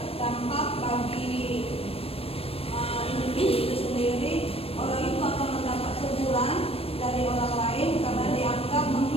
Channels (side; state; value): right; late; 0.28 ms